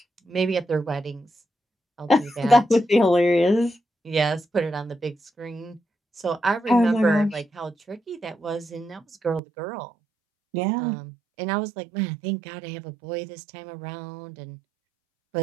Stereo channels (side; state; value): left; drops out; at 9.4 s